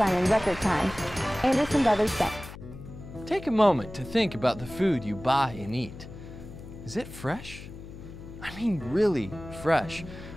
in record time. Anderson Brothers Bank. Take a moment to think about the food you buy and eat. Is it fresh? I mean really fresh.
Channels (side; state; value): left; noise; hum, 14 dB below the sound